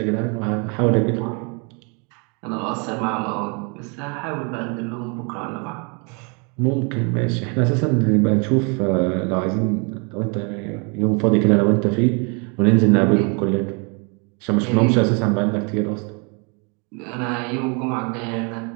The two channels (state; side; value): quieter; left; 33.9 dB